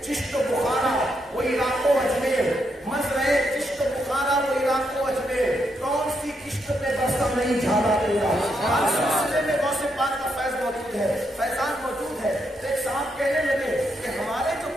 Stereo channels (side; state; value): both; normal; correlation 0.80